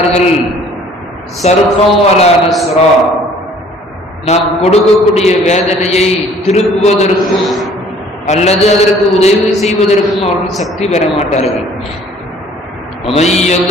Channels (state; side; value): normal; both; correlation 0.55